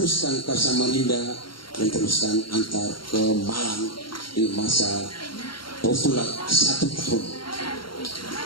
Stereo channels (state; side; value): late; right; 0.73 ms